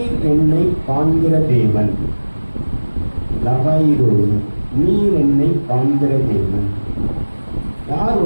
என்னை காண்கிற தேவன். லகாயி ரோயி. நீர் என்னை காண்கிற தேவன். யார்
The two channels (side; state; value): both; inverted; correlation -1.00